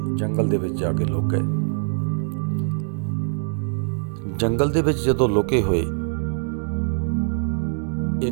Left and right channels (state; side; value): silent; left; digital silence